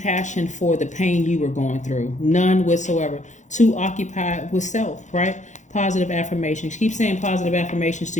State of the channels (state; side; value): late; right; 0.35 ms